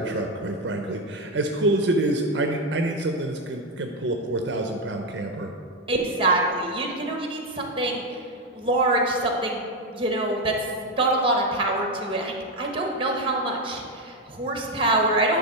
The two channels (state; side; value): normal; both; correlation 0.08